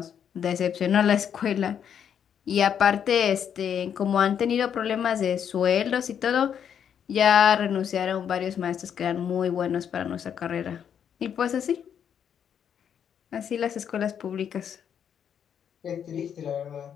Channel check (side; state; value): right; quieter; 8.4 dB